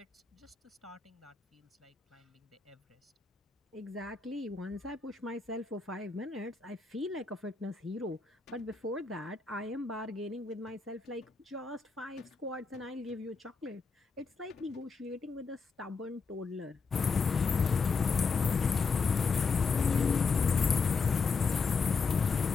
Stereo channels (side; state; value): right; quieter; 4.9 dB